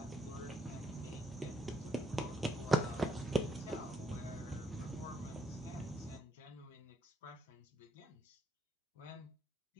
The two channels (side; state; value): both; normal; correlation 0.73